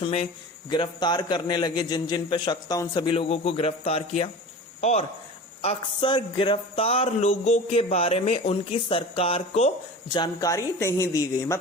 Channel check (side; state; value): both; normal; correlation 0.35